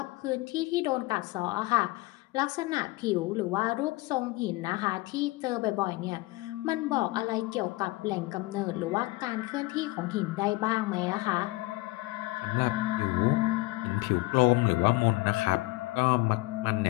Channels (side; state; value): right; quieter; 21.4 dB